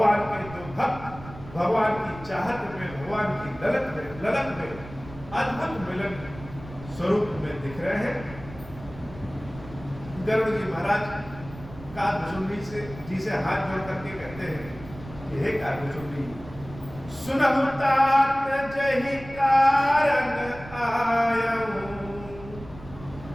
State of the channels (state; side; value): noise; right; rumble, 16 dB below the sound